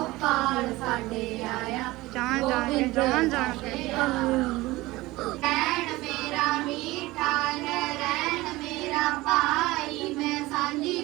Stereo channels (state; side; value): quieter; left; 19.6 dB